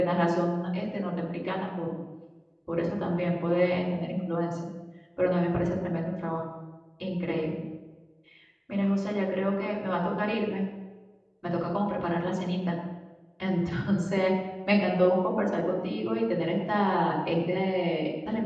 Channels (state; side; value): identical; both; correlation 1.00